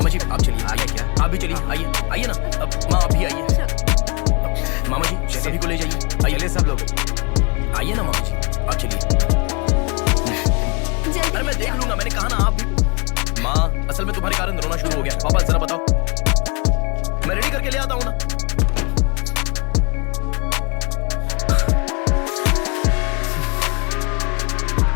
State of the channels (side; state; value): right; quieter; 29.9 dB